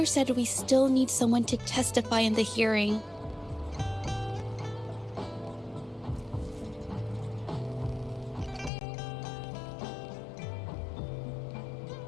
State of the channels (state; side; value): drops out; right; at 8.7 s